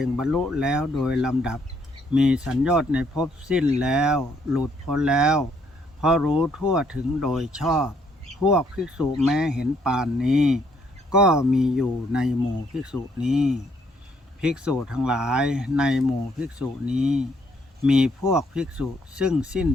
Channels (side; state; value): both; normal; correlation 0.69